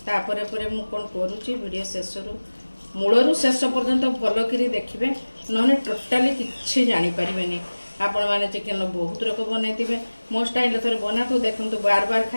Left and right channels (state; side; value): inverted; both; correlation -1.00